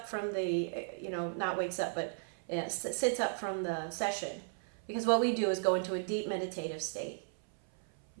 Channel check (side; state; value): left; silent; 54 dB below the other